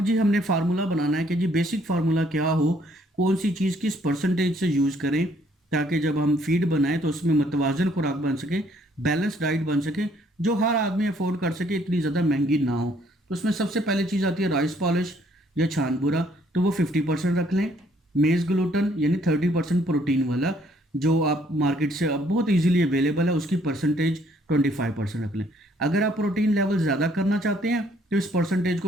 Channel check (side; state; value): both; normal; correlation 0.65